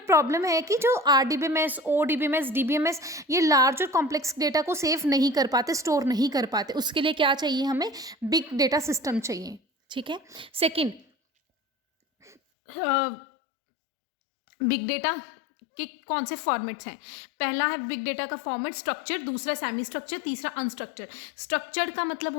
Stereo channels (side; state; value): right; drops out; at 12.4 s